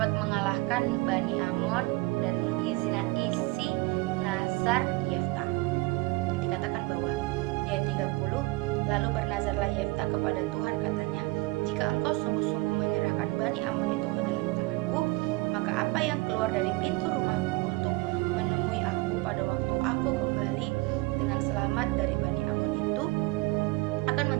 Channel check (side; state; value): left; quieter; 23.1 dB